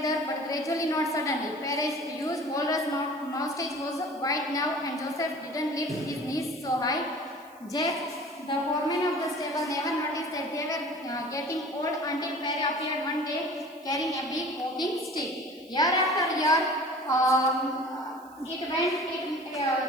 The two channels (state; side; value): noise; right; hiss, 27 dB below the sound